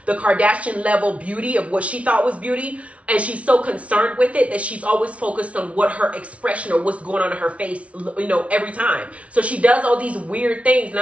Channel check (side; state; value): left; late; 0.064 ms